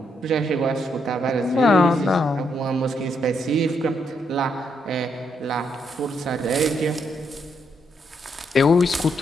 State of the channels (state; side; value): normal; both; correlation 0.77